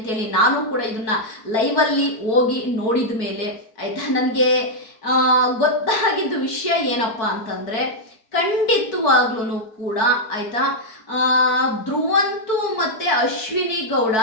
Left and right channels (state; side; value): late; right; 4.6 ms